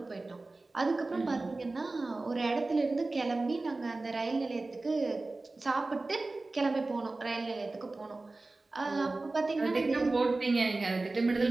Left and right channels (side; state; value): left; quieter; 3.2 dB